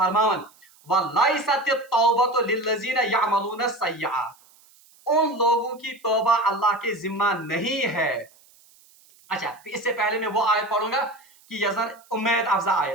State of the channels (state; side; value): noise; right; hiss, 29 dB below the sound